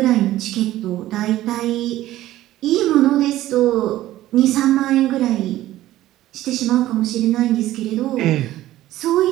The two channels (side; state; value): left; quieter; 14.9 dB